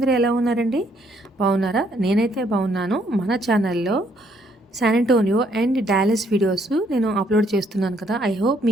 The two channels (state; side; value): normal; both; correlation 0.68